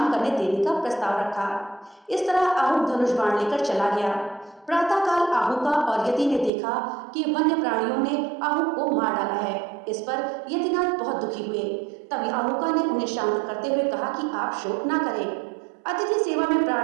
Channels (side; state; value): left; drops out; at 6.5 s